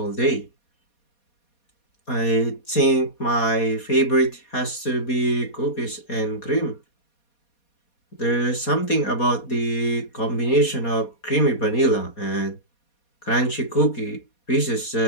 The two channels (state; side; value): late; right; 4.2 ms